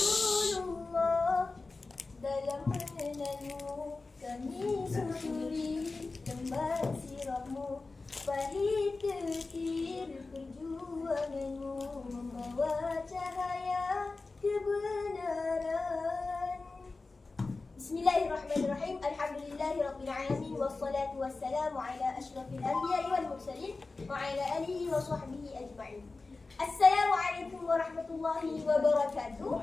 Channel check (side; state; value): right; quieter; 3.7 dB